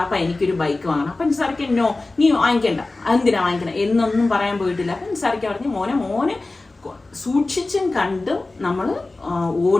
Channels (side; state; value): right; quieter; 3.2 dB